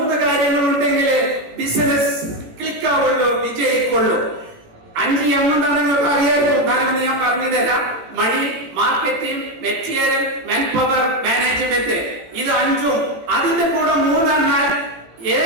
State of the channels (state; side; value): late; left; 18 ms